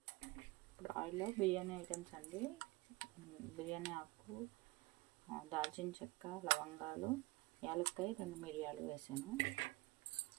ఇప్పుడు ఆయిల్లో బిర్యానీ ఐటమ్స్ అండి. బిర్యానీ ఆకు, దాల్చిన చెక్క, లవంగాలు, యాలక్కాయ, 2 మిరియాలు వేసాను.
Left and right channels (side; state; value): left; quieter; 21.7 dB